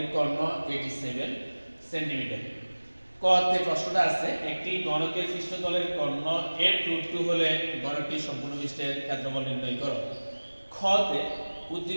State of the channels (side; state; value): both; inverted; correlation -1.00